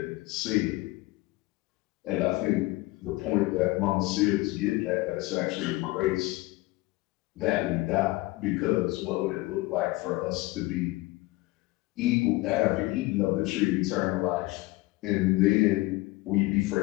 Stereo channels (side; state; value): right; quieter; 20.7 dB